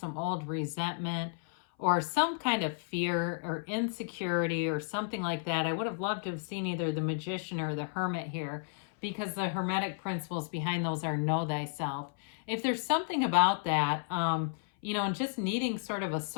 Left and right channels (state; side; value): silent; right; 56 dB below the other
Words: old resentment or some kind of fear or insecurity or something like that, I would have loved to have seen either the Magician or the Hermit here, because the Hermetic principles behind those are know thyself. If there's something about that, you know, and just needing sort of a